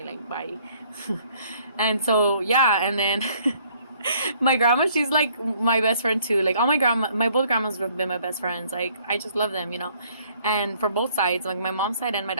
like, bye. And so yeah, and then my grandma, she's like my best friend too. Like, all my both grandmas have been my best friends. Like, I just love them, you know. And for both sides, like my mom's side and my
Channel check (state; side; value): inverted; both; correlation -0.62